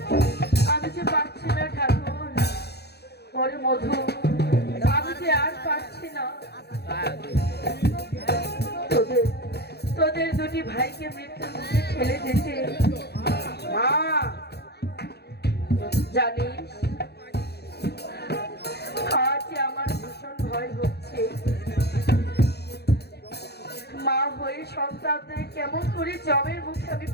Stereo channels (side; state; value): right; late; 0.48 ms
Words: আমি যে পারছি না ঠাকুর। ওরে মধু, আমি যে আর পারছি না। তোদের দুটি ভাইকে মৃত্যুর মুখে ঠেলে দিতে। মা, জানিস, আজ আমার ভীষণ ভয় হচ্ছে। মা হয়ে সন্তানদের কেমন করে জমের মুখে আমি